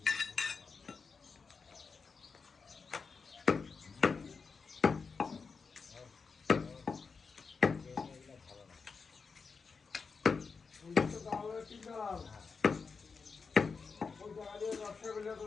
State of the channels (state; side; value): quieter; right; 5.1 dB